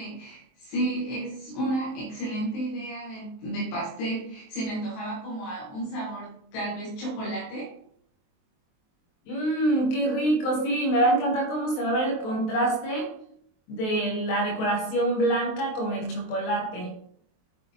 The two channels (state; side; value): late; right; 23 ms